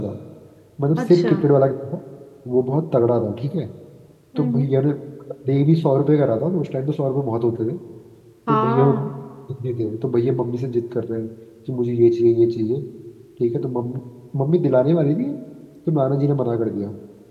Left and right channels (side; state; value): both; identical; correlation 1.00